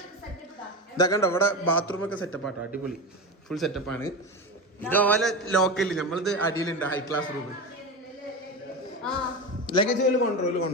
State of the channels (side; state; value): both; normal; correlation 0.21